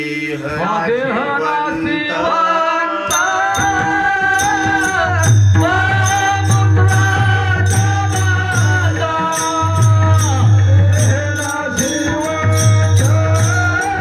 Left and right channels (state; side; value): identical; both; correlation 1.00